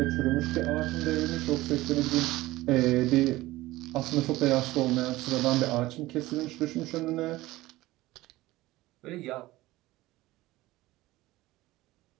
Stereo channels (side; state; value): left; quieter; 18.2 dB